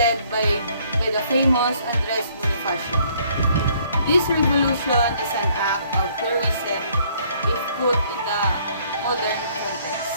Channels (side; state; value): both; inverted; correlation -0.63